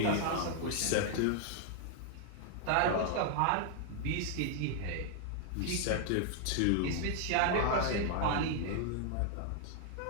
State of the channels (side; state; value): both; different; correlation 0.00